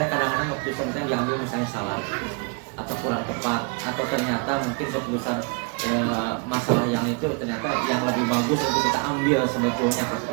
kadang-kadang keputusan kita diambil misalnya salah atau kurang tepat, atau ternyata mungkin keputusan masalah yang itu ternyata yang lebih bagus untuk kita ambil sebetulnya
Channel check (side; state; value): left; quieter; 34.0 dB